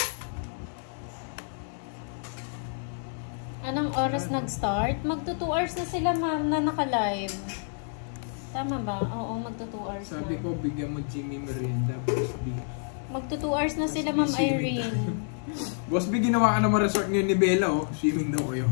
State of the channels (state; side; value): silent; right; 59 dB below the other